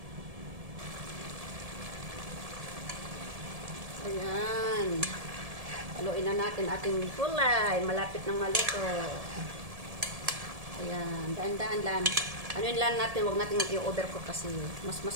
Ayan. Haluin na natin ating gulay. Malapit ng maluto. Ayan. Daan-daan lang. Anuin lang natin, huwag natin i-overcook kasi mas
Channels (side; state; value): left; late; 1.7 ms